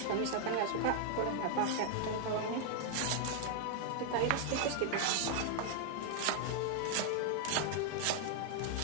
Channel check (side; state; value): both; different; correlation 0.00